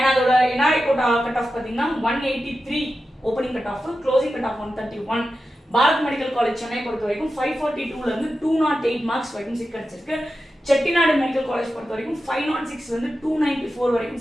அதோட NRI கோட்டா கட் ஆஃப் பார்த்தீங்கன்னா 183 opening cut of, closing cut of 131. Bharat medical college Chennai பொறுத்த வரைக்கும் 542ல இருந்து 208 மார்க்ஸ் வரைக்கும் சீட் கிடைச்சிருக்கு. செட்டிநாடு மெடிக்கல் காலேஜ் பொறுத்த வரைக்கும் 506 இருந்து 294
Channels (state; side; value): normal; both; correlation 0.91